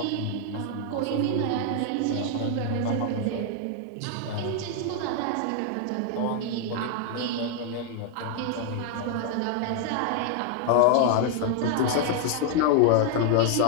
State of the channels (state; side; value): different; both; correlation 0.00